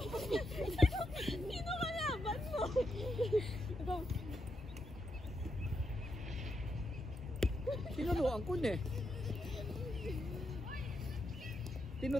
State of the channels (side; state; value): both; normal; correlation 0.82